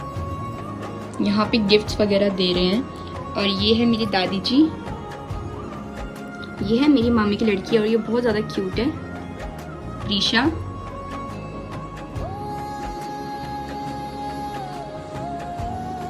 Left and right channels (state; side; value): identical; both; correlation 1.00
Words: यहाँ पे गिफ्ट्स वगैरह दे रहे हैं। और ये है मेरी दादी जी, ये है मेरी मामी की लड़की और ये बहुत ज़्यादा क्यूट है, प्रीशा।